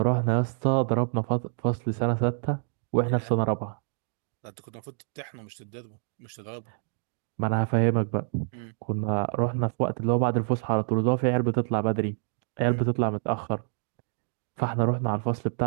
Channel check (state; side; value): silent; left; digital silence